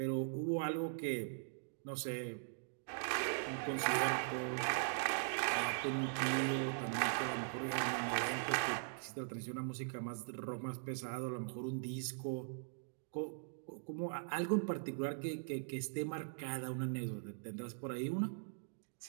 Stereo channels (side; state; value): left; silent; digital silence